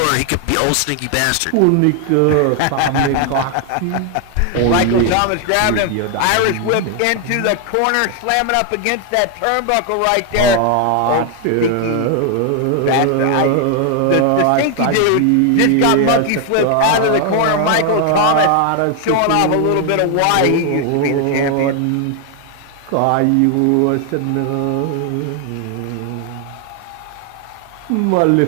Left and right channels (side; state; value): both; different; correlation 0.00